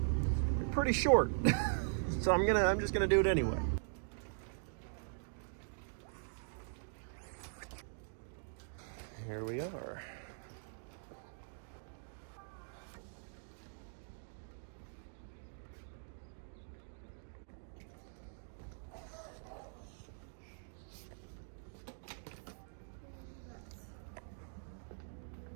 pretty short. So I'm just gonna do it anyway. Here we are.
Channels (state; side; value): silent; left; digital silence